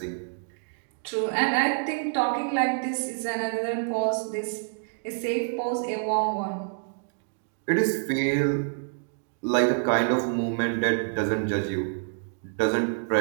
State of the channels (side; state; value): left; silent; digital silence